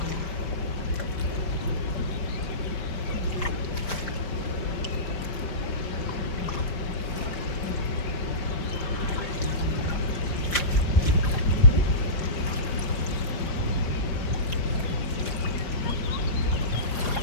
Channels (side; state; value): right; late; 5.0 ms